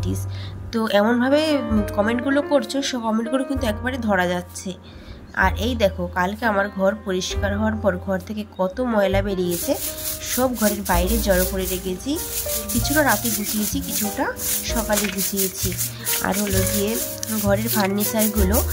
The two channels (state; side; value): identical; both; correlation 1.00